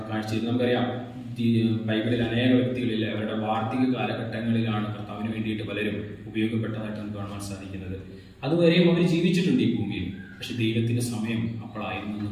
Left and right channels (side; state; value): both; identical; correlation 1.00